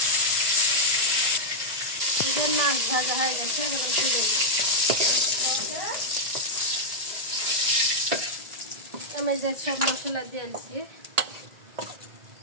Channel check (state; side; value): late; left; 1.9 ms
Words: মাছ ভাজা হয়ে গেছে, এখন তুলে দিব। আমি যে সব মশলা দিয়েছি